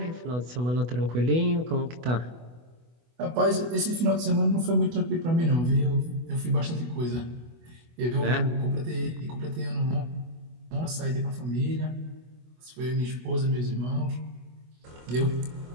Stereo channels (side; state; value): left; late; 24 ms